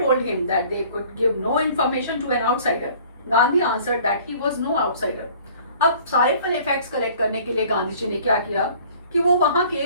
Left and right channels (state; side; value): inverted; both; correlation -0.52